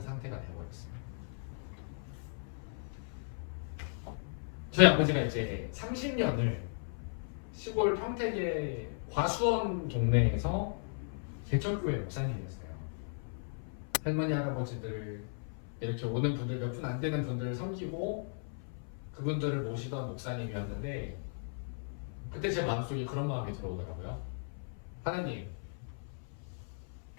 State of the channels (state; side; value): silent; right; 54 dB below the other